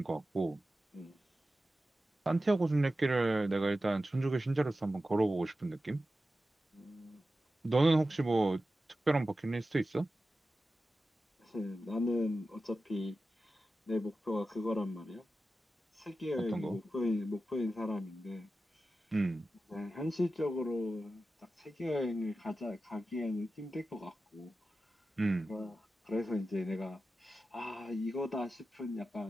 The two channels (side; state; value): both; normal; correlation 0.93